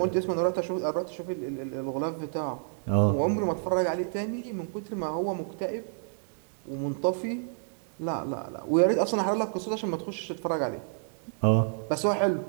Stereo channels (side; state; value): left; silent; 58 dB below the other